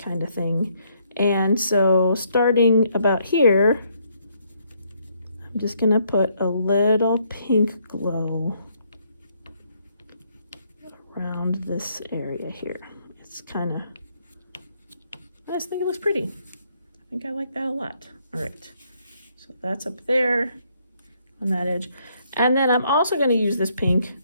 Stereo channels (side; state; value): both; inverted; correlation -0.71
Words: kind of thing. And so starting about here, I'm just gonna put a little pink glow around this area here. It's kind of, I just think it looks pretty. I think I like that a lot. All right, so that's up there on that edge. And then I'm also gonna use this pink.